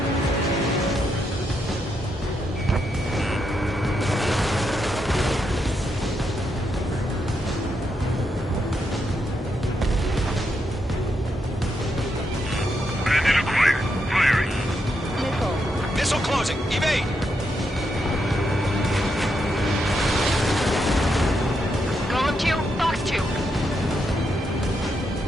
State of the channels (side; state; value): both; normal; correlation 0.81